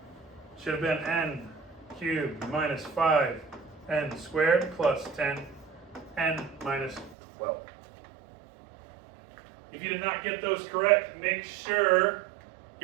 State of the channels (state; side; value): drops out; left; at 7.2 s